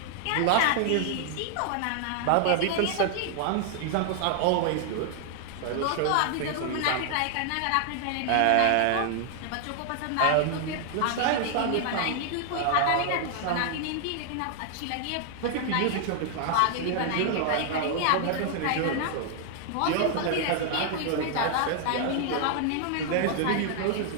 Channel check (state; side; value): different; both; correlation 0.00